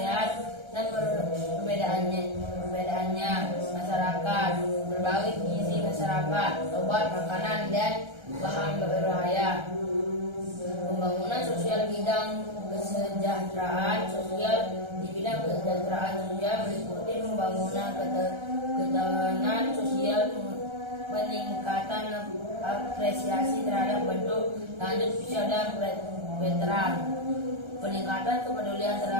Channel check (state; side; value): late; left; 1.3 ms